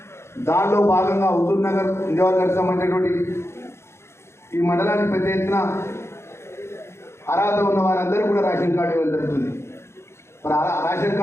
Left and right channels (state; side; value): late; right; 0.13 ms